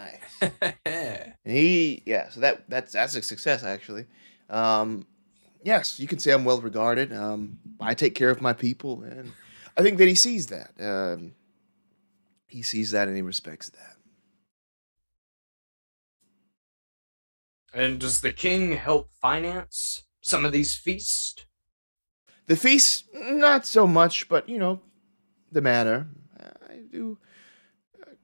And so that's a success actually. Yes, you can say I'm well regarded. I take care of my people, and I think that he sees that. He sees that and he respects that. And does the king help finance some of these feasts? The feast, not so much, but the manor.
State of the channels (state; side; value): inverted; both; correlation -1.00